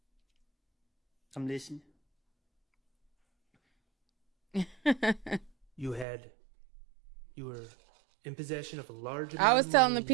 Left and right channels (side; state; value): left; drops out; at 6.1 s